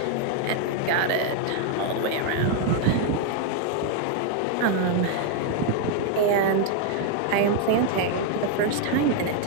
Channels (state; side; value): different; both; correlation 0.00